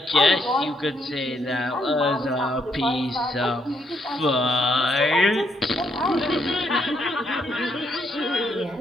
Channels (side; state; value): both; normal; correlation 0.75